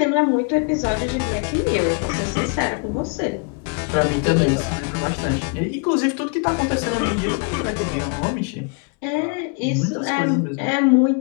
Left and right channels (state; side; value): quieter; right; 37.0 dB